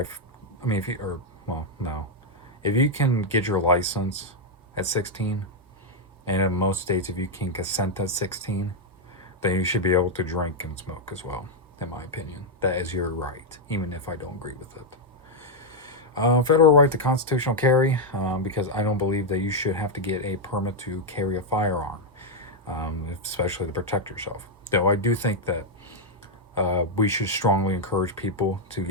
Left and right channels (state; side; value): normal; both; correlation -0.01